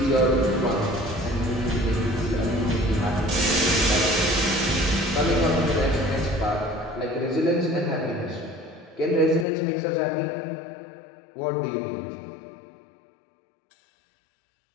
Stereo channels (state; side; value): drops out; right; at 9.5 s